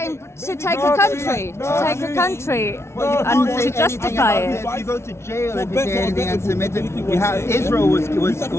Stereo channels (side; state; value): right; late; 0.13 ms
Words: to take a country, and to justify it. You go to jail if you say anything anti-Semitic. Israel was